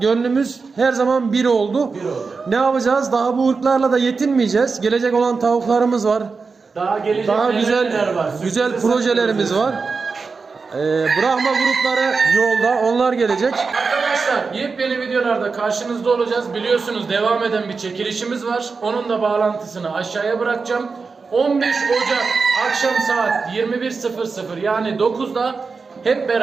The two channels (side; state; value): left; quieter; 4.6 dB